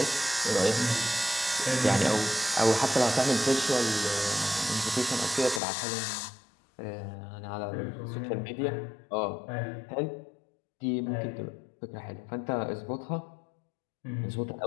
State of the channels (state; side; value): drops out; right; at 5.6 s